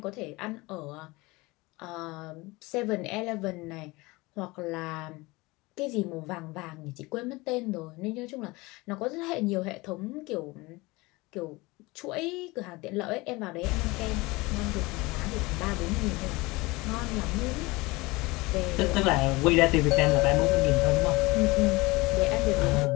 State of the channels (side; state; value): right; quieter; 22.8 dB